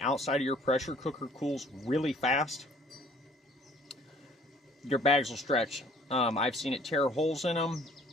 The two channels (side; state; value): both; normal; correlation 0.57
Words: outside of your pressure cooker cools really fast, your bags will stretch. I've seen it tear holes in them.